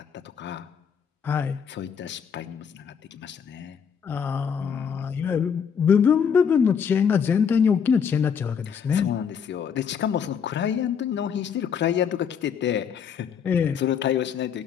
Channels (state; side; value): quieter; right; 7.2 dB